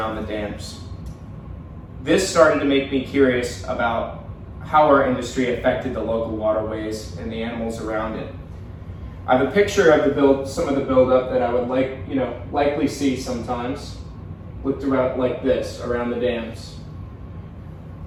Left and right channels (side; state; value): both; identical; correlation 1.00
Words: the dams. This started to make me curious about how our industry affected the local waterways and the animals around it. I have a picture of some of the buildup that I would likely see sometimes, looked around like this around the dams.